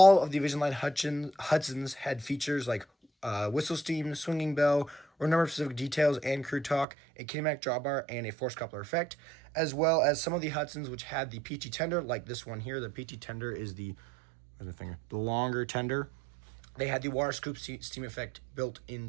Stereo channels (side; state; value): left; drops out; at 6.9 s